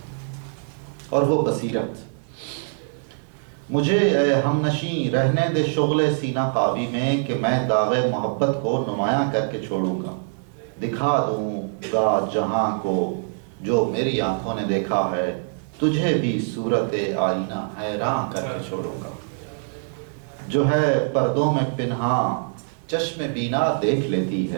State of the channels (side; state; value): left; silent; digital silence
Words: اور وہ بصیرت، مجھے اے ہم نشیں رہنے دے شغل سینہ قابی میں، کہ میں داغ محبت کو نمایاں کر کے چھوڑوں گا، دکھا دوں گا جہاں کو جو میری آنکھوں نے دیکھا ہے، تجھے بھی صورت آئینہ حیران کر کے چھوڑوں گا، جو ہے پردوں میں پنہاں چشم بینا دیکھ لیتی